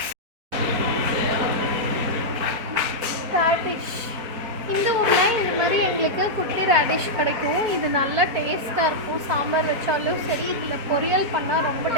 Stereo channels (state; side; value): late; left; 4.3 ms